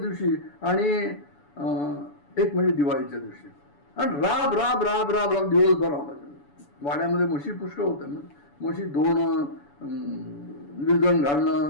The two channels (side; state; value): right; late; 7.0 ms